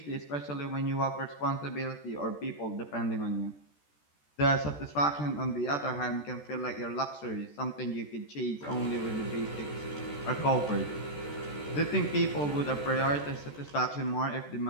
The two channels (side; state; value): right; late; 14 ms